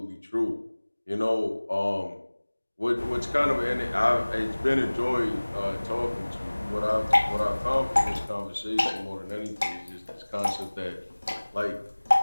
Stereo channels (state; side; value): inverted; both; correlation -1.00